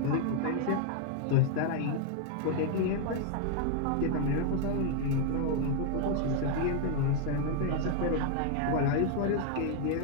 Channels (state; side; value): different; both; correlation 0.00